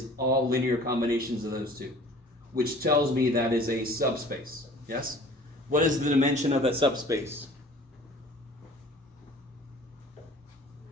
all linear combinations of those two, which tells me that is a subspace. Yes? What is the dimension of that subspace?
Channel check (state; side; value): normal; both; correlation 0.48